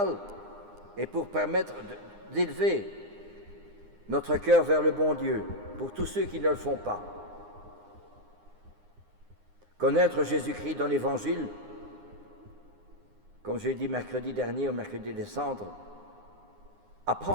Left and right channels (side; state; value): left; late; 9.8 ms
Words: et pour permettre d'élever notre cœur vers le bon Dieu, pour tous ceux qui ne le font pas. Connaître Jésus-Christ dans l'Évangile, comme j'ai dit mercredi dernier, au mercredi des Cendres,